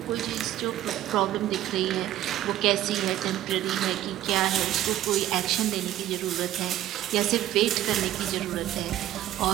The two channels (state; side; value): quieter; left; 13.2 dB